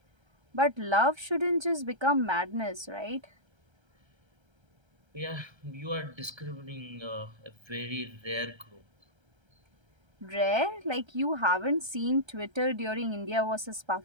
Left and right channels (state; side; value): late; left; 1.3 ms